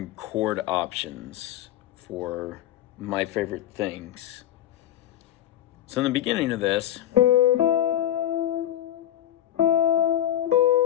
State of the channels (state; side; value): quieter; right; 12.1 dB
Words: chord options for my favorite things. So in the beginning of this, if